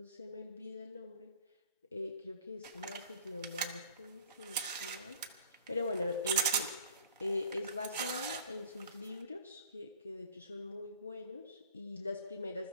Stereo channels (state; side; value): inverted; both; correlation -0.45